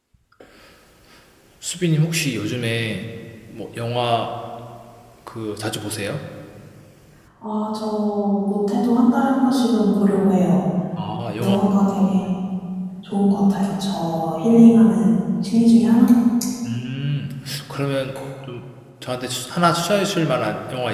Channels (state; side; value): identical; both; correlation 1.00